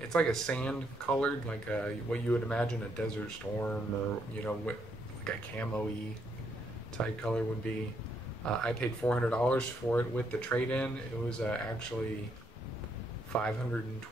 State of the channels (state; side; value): normal; both; correlation 0.75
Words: like a sand colored, like what you would imagine a Desert Storm or, you know, like a camo-y type color would be. I paid $400 for it with the trade-in. It was actually